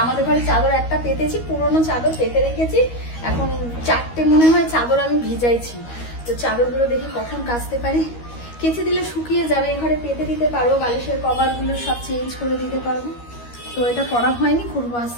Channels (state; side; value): late; right; 13 ms